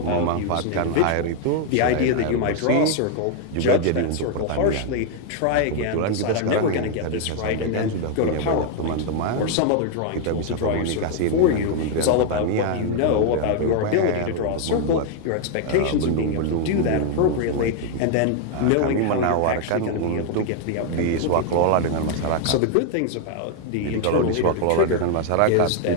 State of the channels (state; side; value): different; both; correlation 0.00